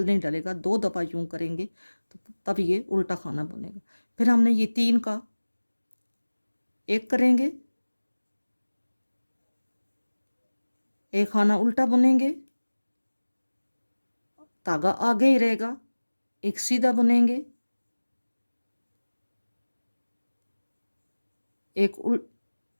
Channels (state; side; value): inverted; both; correlation -1.00